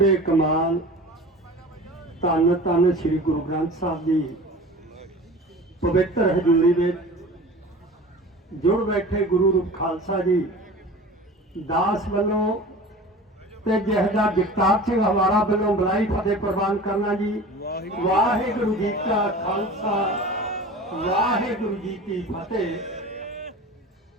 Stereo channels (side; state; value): both; normal; correlation 0.38